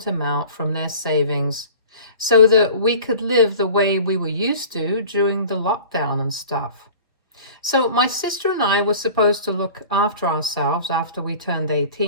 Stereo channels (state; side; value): inverted; both; correlation -0.42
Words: amount from their savings so that we could live the way we were used to during the lockdown and stuff. So, my sister and I were supposed to look after ourselves after we turned